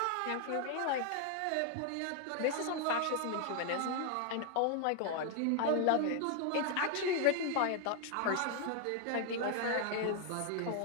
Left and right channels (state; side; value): different; both; correlation 0.00